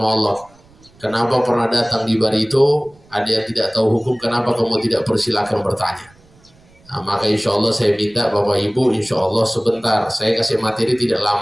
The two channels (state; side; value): noise; right; rumble, 29 dB below the sound